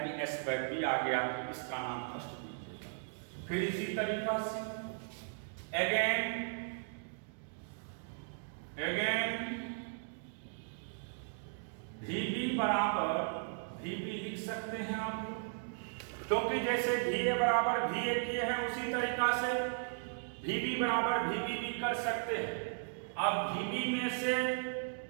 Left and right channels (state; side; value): silent; left; digital silence